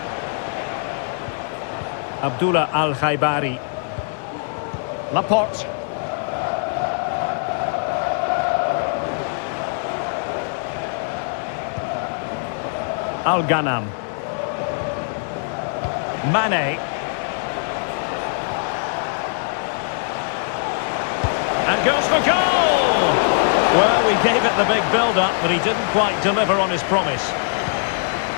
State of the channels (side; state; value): right; silent; digital silence